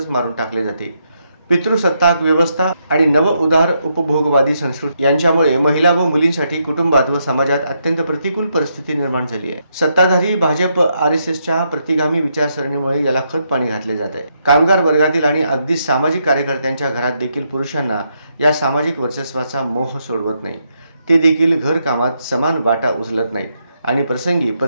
मारून टाकले जाते। पितृसत्ताक व्यवस्था आणि नव उदार उपभोगवादी संस्कृती यांच्यामुळे महिला व मुलींसाठी कुटुंबात व समाजात अत्यंत प्रतिकूल परिस्थिती निर्माण झाली आहे। सत्ताधारी भाजप आरएसएसच्या प्रतिगामी विचारसरणीमुळे याला खत पाणी घातले जात आहे। कामगार वर्गातील आणि अगदी सामाजिक कार्यकर्त्यांच्या घरात देखील पुरुषांना या सामाजिक वर्चस्वाचा मोह सोडवत नाही। ते देखील घर कामात समान वाटा उचलत नाहीत आणि प्रसंगी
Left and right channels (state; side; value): inverted; both; correlation -0.79